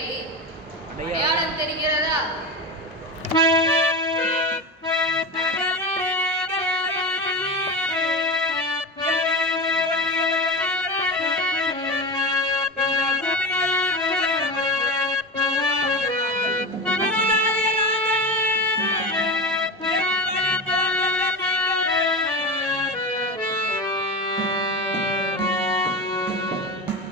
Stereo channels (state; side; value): normal; both; correlation 0.24